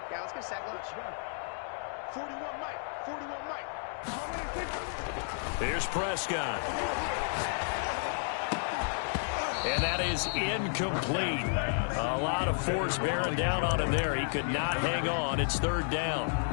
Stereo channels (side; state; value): right; silent; digital silence